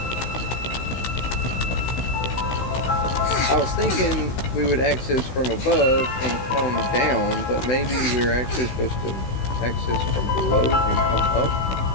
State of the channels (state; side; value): late; right; 16 ms